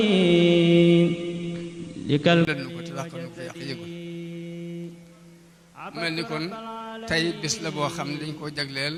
likal len ko te dàq nu ko yàq yëgul mel ni kon tey bis la boo xam ne dañ koo jagleel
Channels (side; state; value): both; identical; correlation 1.00